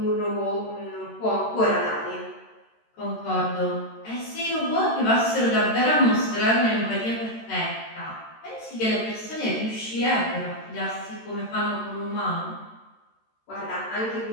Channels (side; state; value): right; late; 13 ms